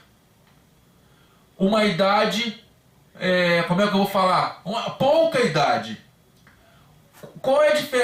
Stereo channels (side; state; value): both; identical; correlation 1.00